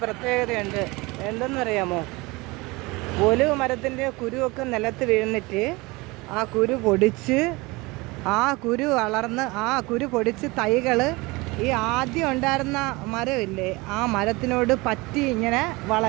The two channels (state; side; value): quieter; left; 23.7 dB